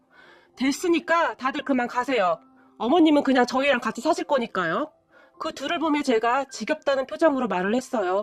됐으니까 다들 그만 가세요. 어머님은 그냥 저희랑 같이 사실 거니까요. 그 둘을 보며 제가 지겹다는 표정으로 말을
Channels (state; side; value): identical; both; correlation 1.00